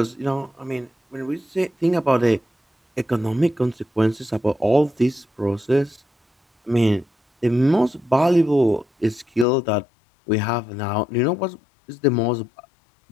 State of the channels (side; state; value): right; drops out; at 9.5 s